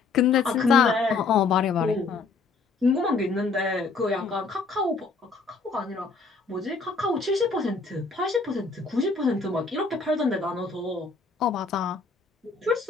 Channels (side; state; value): right; quieter; 4.3 dB